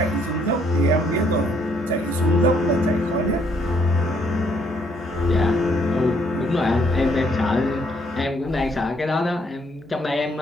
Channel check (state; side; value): noise; right; hum, 27 dB below the sound